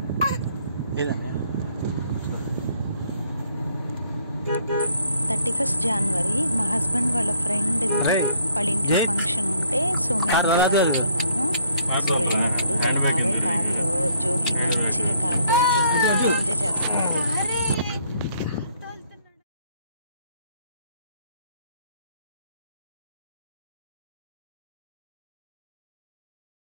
31 జనవరి మా హస్బెండ్ వాళ్ళ ఫ్రెండ్ వాళ్ళ ఇంట్లో ఫంక్షన్ ఉంటే సో మేము వెళ్తున్నాము. సో వెళ్ళినప్పుడు వాళ్ళ బాబాయ్ కార్లో జోహి మంచిగా కార్ డ్రైవ్ చేస్తున్నాడు, ఎంజాయ్ చేస్తున్నాడు.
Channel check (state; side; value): inverted; both; correlation -0.66